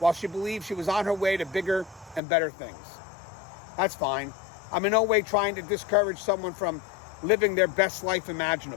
she believed she was on her way to bigger and better things. That's fine. I'm in no way trying to discourage someone from living their best life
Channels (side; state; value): right; drops out; at 2.2 s